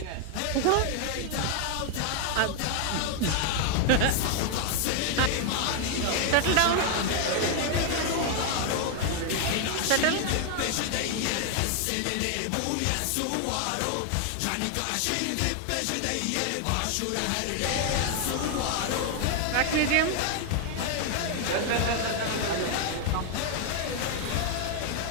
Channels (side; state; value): both; different; correlation 0.00